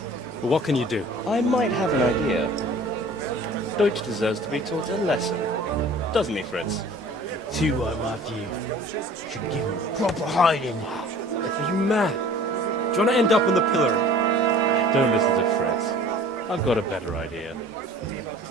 But what can you do? I might have an idea. Deutsch deserves to be taught a lesson. Doesn't he, Fritz? Too right, Matthew. Should give him proper hiding. Are you mad? Do you want to end up on the pillory? Don't listen to Fritz. I've got a better idea.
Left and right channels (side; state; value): both; normal; correlation 0.47